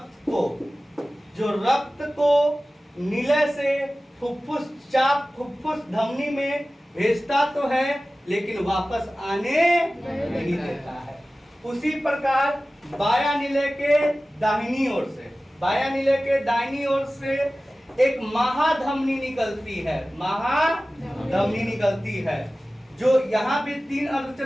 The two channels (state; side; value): normal; both; correlation 0.96